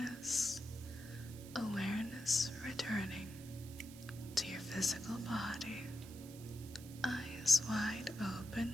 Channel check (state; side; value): noise; right; hiss, 17 dB below the sound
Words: Awareness returning to your physical body. Eyes wide